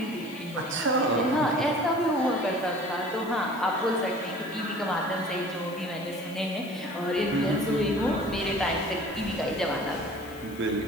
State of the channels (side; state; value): left; noise; hiss, 22 dB below the sound